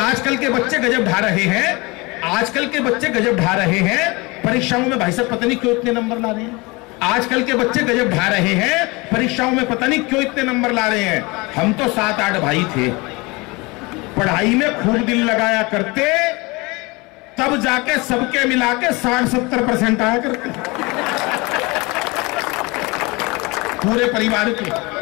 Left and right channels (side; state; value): right; quieter; 25.2 dB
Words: के बच्चे गजब ढा रहे हैं, आजकल के बच्चे गजब ढा रहे हैं परीक्षाओं में। भाई साहब पता नहीं क्यों इतने नंबर ला रहे हैं। आजकल के बच्चे गजब ढा रहे हैं परीक्षाओं में, पता नहीं क्यों इतने नंबर ला रहे हैं। हम तो 7-8 भाई थे, पढ़ाई में खूब दिल लगाया करते, तब जाके सबके मिला के 60-70% आया करते पूरे परिवार के।